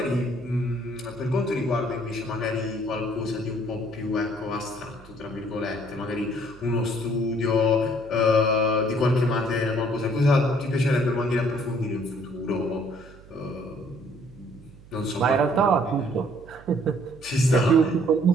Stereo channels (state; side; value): noise; right; hum, 22 dB below the sound